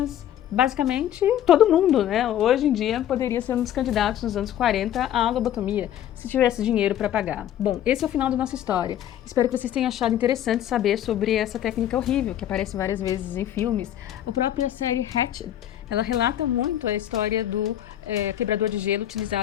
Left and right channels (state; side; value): quieter; right; 11.4 dB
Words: Basicamente, todo mundo, né? Hoje em dia poderia ser um dos candidatos nos anos 40 à lobotomia, se tivesse dinheiro para pagar. Bom, esse é o final da nossa história. Espero que vocês tenham achado interessante saber sobre essa técnica horrível, que aparece várias vezes em filmes. A própria série Hatchet Ela relata muito a história do quebrador de gelo